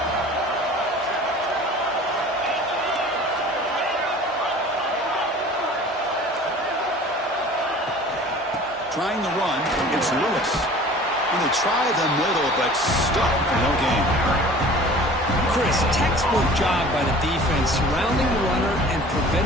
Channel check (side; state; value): both; normal; correlation 0.44